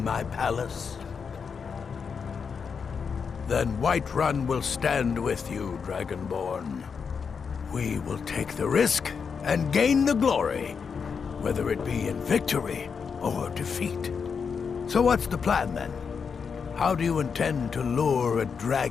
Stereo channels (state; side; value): quieter; right; 6.0 dB